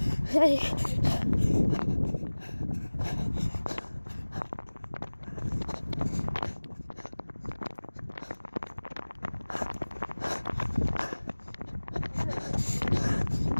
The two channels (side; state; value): both; inverted; correlation -1.00